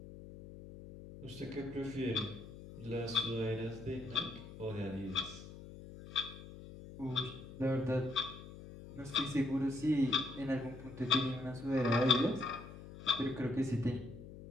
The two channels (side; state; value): left; noise; hum, 14 dB below the sound